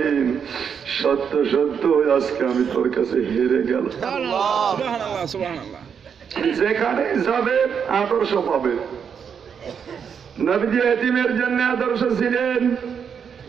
সত্য সত্য আজকে আমি তোর কাছে হেরে গেলাম। যেখানে যাবে আদর্শ পাবে। নবীজি এতিমের জন্য আদর্শ ছিলেন।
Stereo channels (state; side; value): quieter; left; 7.1 dB